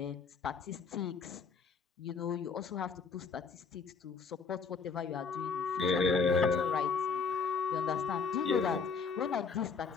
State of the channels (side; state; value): right; quieter; 5.2 dB